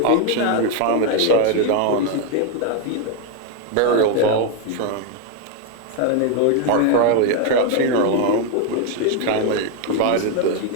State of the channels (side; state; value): both; different; correlation 0.01